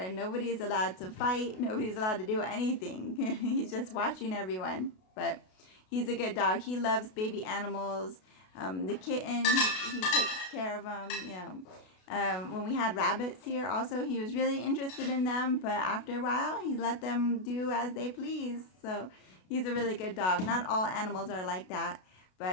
nobody's allowed to fight. Nobody's allowed to do anything. He's just watching everyone. But he's a good dog. He loves baby animals. The kitten, he takes care of them, you know. When we had rabbits here also, he was really interested in them, but after a while he let them do as they please. So he's a really good dog. Not all animals are like that,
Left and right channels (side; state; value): right; late; 32 ms